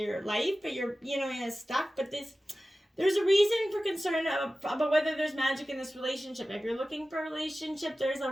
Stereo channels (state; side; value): normal; both; correlation 0.95